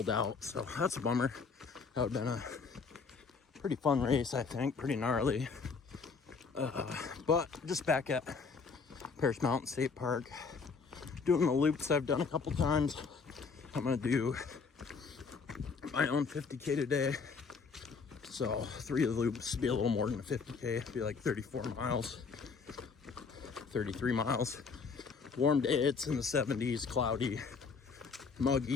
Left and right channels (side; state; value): right; quieter; 5.1 dB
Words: out, so that's a bummer. That would have been a pretty fun race, I think. Pretty gnarly. But just back at Paris Mountain State Park. Doing the loops I've done a couple times. I'm going to do my own 50K today. So 3 of the loops be a little more than a 50K. It'd be like 34 miles, 33 miles. Warm day, it's in the 70s, cloudy, muggy.